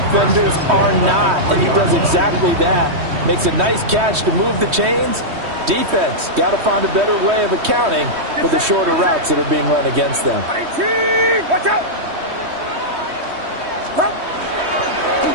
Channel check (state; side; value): late; left; 3.2 ms